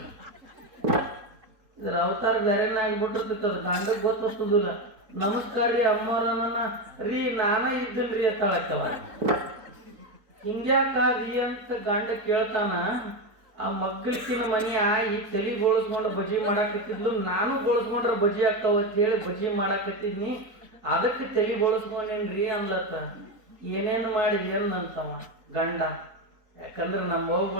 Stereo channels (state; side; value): late; left; 4.3 ms